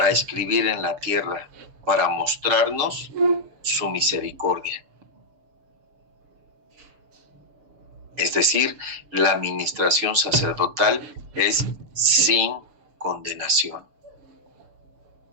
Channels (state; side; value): late; left; 6.9 ms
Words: escribir en la tierra, para mostrarnos su misericordia. Es decir, la administración sacerdotal es sin condenación.